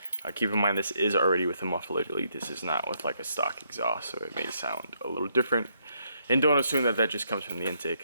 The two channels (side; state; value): both; inverted; correlation -0.74